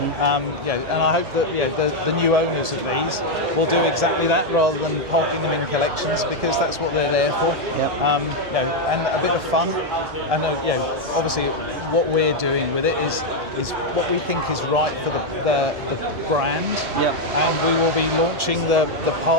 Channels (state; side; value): late; left; 1.7 ms